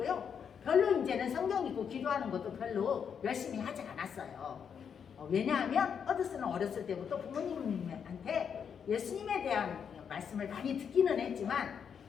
별로 이제는 성경 읽고 기도하는 것도 별로 열심히 하지 않았어요. 왜냐하면 허드슨은 어렸을 때부터 부모님한테 예수님에 대한 말씀을 많이 듣기는 했지만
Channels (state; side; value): quieter; right; 7.3 dB